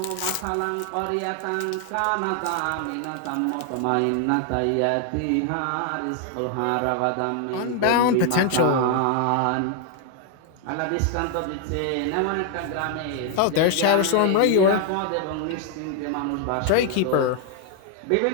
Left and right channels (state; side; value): different; both; correlation 0.00